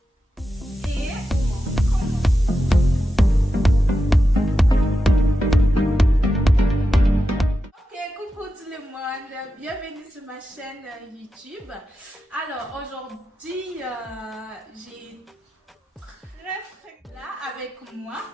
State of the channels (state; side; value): normal; both; correlation 0.90